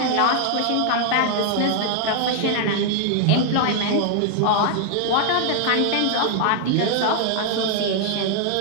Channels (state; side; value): different; both; correlation 0.00